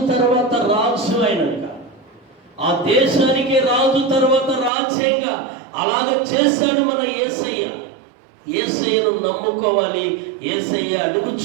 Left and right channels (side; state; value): left; drops out; at 4.7 s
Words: తర్వాత రాజు అయినాక ఆ దేశానికి రాజు తర్వాత రాజ్యంగా అలాగ చేశాడు మన యేసయ్యను నమ్ముకోవాలి. యేసయ్య